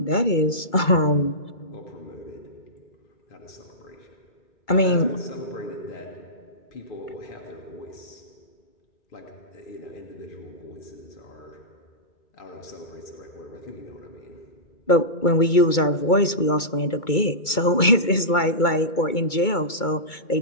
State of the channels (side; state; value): right; late; 2.2 ms